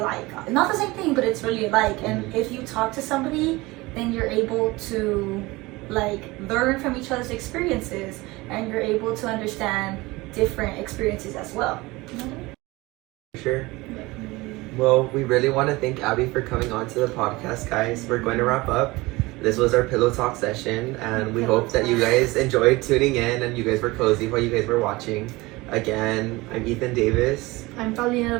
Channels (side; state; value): left; quieter; 21.6 dB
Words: not the same thing, but it's really alike. And if you talk to somebody, then you're able to like learn from each other's experiences, and you're able to understand different experiences as well. Sure. Well, we really want to thank Abby for coming on to the podcast, guys. We're going to wrap up. This was our pillow talk session, and we hope that you guys enjoyed tuning in and you guys were cozy while you guys were watching. Again, I'm Ethan Davis. I'm Paulina